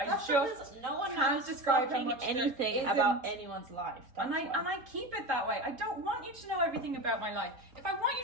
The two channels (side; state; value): left; late; 3.8 ms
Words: because no one can't knows describe how fucking much there anything isn't. about anyone's life. And I keep it that way. I don't want you to know everything about my life. If I want you